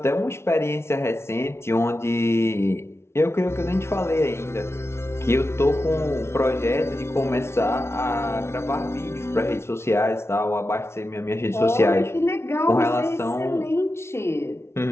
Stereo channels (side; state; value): right; late; 0.13 ms